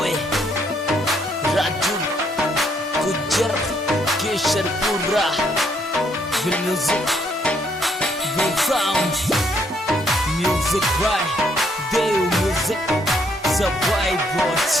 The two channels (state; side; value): normal; both; correlation 0.71